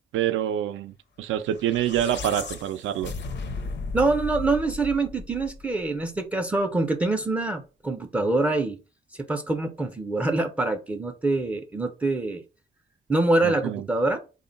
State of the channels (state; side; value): quieter; left; 3.2 dB